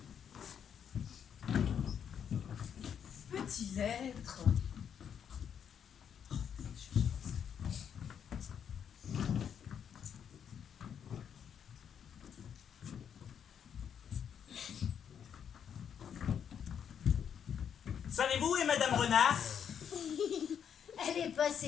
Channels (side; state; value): right; quieter; 8.1 dB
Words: Petit lettre. Savez-vous où est Madame Renard? Elle est